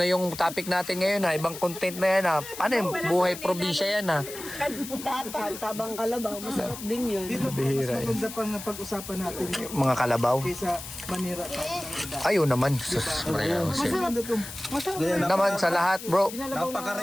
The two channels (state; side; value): noise; left; hiss, 11 dB below the sound